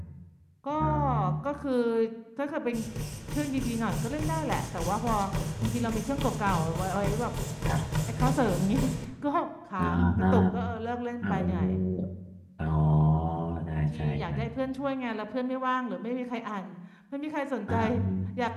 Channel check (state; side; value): identical; both; correlation 1.00